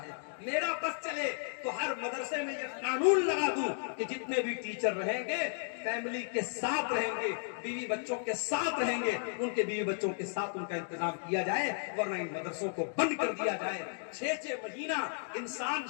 ہے۔ میرا بس چلے تو ہر مدرسے میں یہ قانون لگا دوں کہ جتنے بھی ٹیچر رہیں گے فیملی کے ساتھ رہیں گے، بیوی بچوں کے ساتھ رہیں گے، ان کے بیوی بچوں کے ساتھ ان کا انتظام کیا جائے، ورنہ ان مدرسوں کو بند کر دیا جائے۔ 6 مہینہ انسان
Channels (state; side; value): silent; right; digital silence